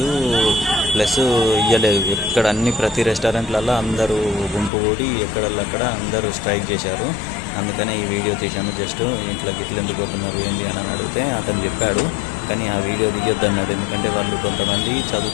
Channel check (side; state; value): right; drops out; at 4.7 s